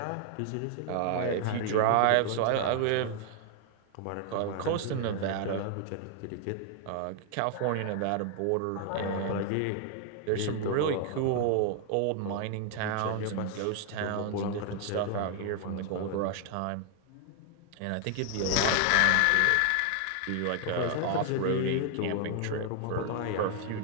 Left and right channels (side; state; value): both; different; correlation 0.00